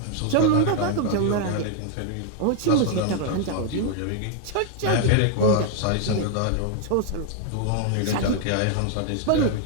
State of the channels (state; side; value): different; both; correlation 0.00